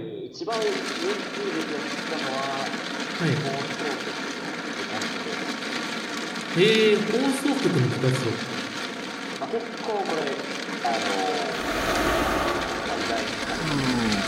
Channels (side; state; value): both; identical; correlation 1.00